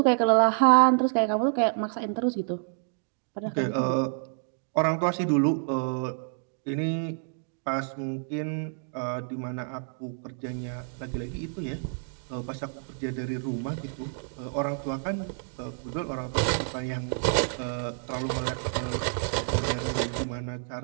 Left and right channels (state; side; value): silent; left; 59 dB below the other